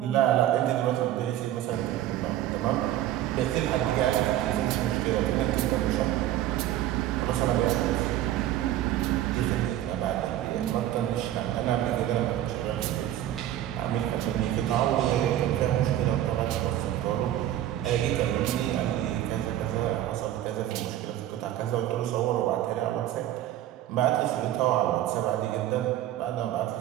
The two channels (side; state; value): left; quieter; 12.7 dB